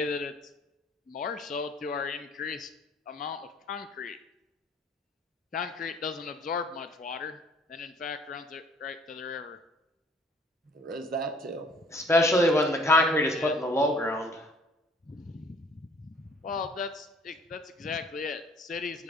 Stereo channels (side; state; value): both; normal; correlation 0.58